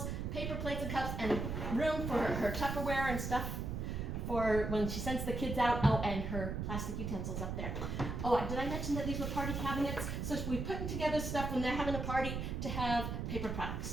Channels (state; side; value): noise; right; rumble, 3 dB below the sound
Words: paper plates and cups, and room for her Tupperware and stuff for when she sends the kids out. Oh, and her plastic utensils up there. Oh, did I mention that these were party cabinets? So we put together stuff when they're having a party to have paper